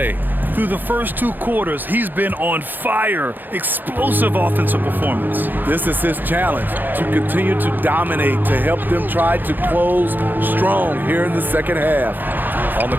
Through the first 2 quarters, he's been on fire. Explosive offensive performance. This is his challenge, to continue to dominate, to help them try to close strong here in the second half. On the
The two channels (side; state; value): left; late; 0.089 ms